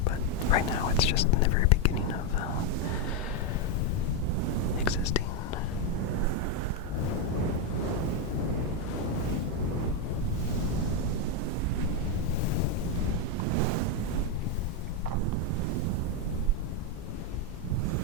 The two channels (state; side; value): normal; both; correlation 0.03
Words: but right now it's just in the very beginning of existing.